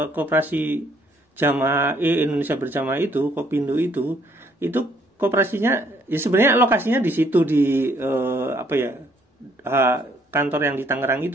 koperasi Jamaah Indonesia Berjamaah itu, Kopindo itu koperasinya ya sebenarnya lokasinya di situ, di kantor yang di Tangerang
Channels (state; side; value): normal; both; correlation 0.66